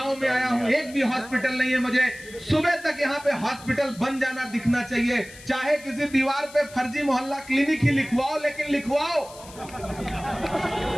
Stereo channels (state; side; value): noise; left; hiss, 19 dB below the sound